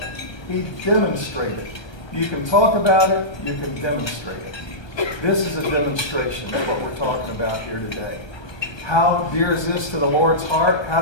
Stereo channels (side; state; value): right; late; 1.3 ms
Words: He demonstrated. You can talk about it. You can demonstrate it. This is a demonstration of what we're talking about here today. How dear is this to the Lord's heart? How